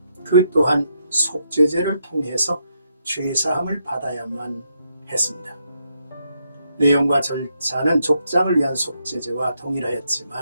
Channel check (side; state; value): both; inverted; correlation -0.78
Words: 그 또한 속죄제를 통해서 죄사함을 받아야만 했습니다. 내용과 절차는 족장을 위한 속죄제와